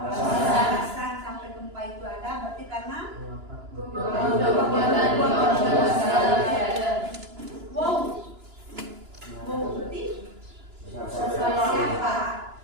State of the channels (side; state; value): left; late; 2.9 ms